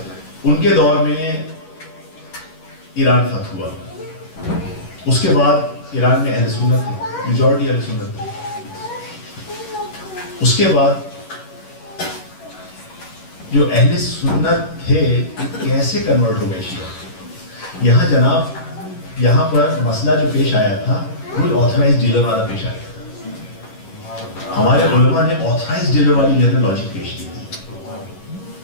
ان کے دور میں ایران فتح ہوا, اس کے بعد ایران میں اہل سنت تھے, میجورٹی اہل سنت تھے. اس کے بعد جو اہل سنت تھے کیسے کنورٹ ہو گئے شیعہ. یہاں جناب, یہاں پر مسئلہ جو پیش آیا تھا وہ آتھورائز ڈیلر والا پیش آیا تھا. ہمارے علماء نے آتھورائز ڈیلر والی جو ہے لاجک پیش کی تھی.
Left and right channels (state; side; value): late; right; 11 ms